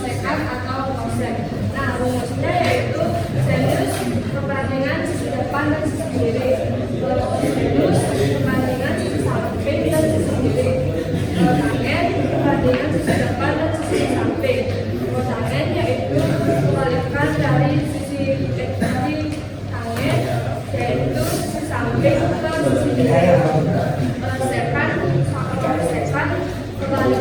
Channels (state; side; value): identical; both; correlation 1.00